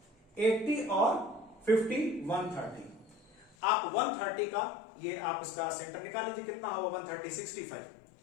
80 और 50 130। आप 130 का ये आप इसका सेंटर निकाल लीजिए, कितना होगा 130 65।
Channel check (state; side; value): drops out; right; at 3.6 s